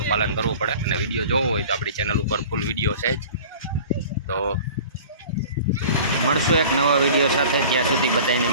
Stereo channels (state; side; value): inverted; both; correlation -0.42